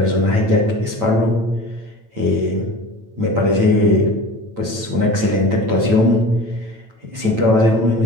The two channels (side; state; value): left; late; 9.0 ms